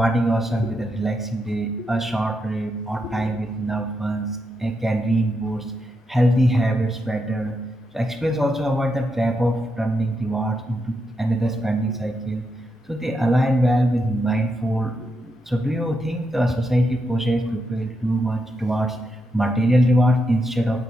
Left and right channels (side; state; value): both; normal; correlation 0.83